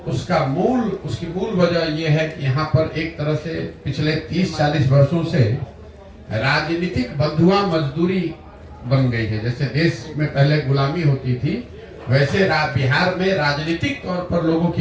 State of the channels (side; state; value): both; identical; correlation 1.00